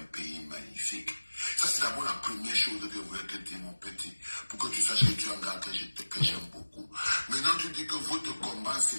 pays magnifique. Ça, c'est d'abord la première chose que je voulais te dire, mon petit, pour que tu saches que tu es un gars que j'aime beaucoup. Maintenant, tu dis que votre combat, c'est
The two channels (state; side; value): inverted; both; correlation -1.00